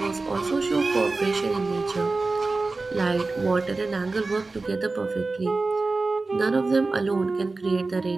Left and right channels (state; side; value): quieter; left; 3.6 dB